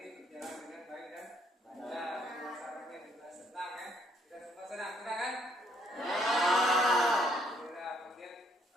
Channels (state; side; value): normal; both; correlation 0.68